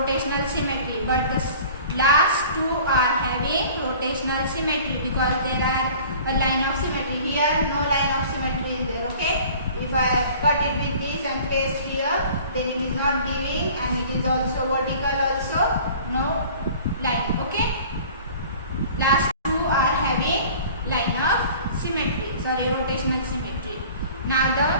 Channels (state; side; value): inverted; both; correlation -0.46